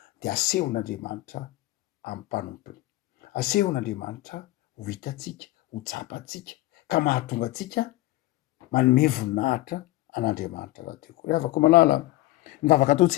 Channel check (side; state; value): right; quieter; 18.0 dB